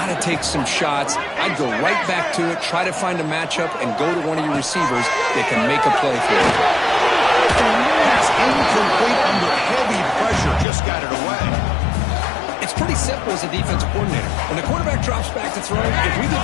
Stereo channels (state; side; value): drops out; right; at 10.7 s